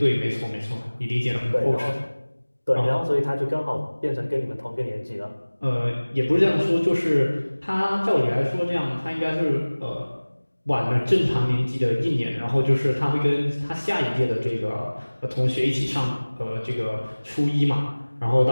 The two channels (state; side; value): inverted; both; correlation -1.00